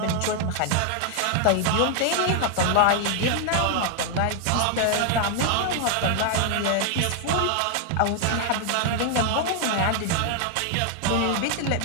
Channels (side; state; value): both; different; correlation 0.00